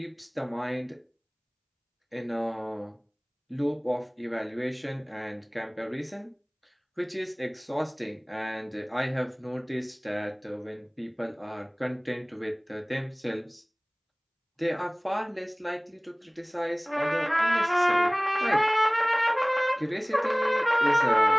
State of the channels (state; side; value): identical; both; correlation 1.00